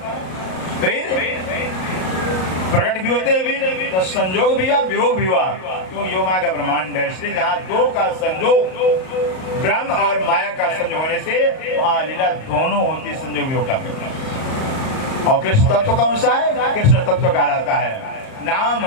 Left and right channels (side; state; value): right; late; 38 ms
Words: फिर प्रकट भी होते हैं, तो संयोग भी हुआ, वियोग भी हुआ। क्यों? योग माया का ब्रह्मांड है, इसलिए जहाँ 2 का संयोग, ब्रह्म और माया का संयोग होने से वहाँ लीला दोनों होती, संयोग वियोग का। और कृष्ण तत्व कौन सा है? कृष्ण तत्व कहलाता है। नाम